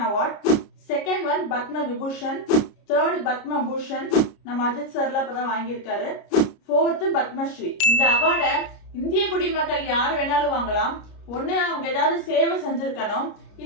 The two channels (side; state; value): right; late; 30 ms